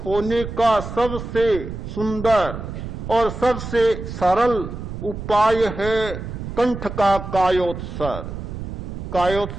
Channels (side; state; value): right; noise; rumble, 8 dB below the sound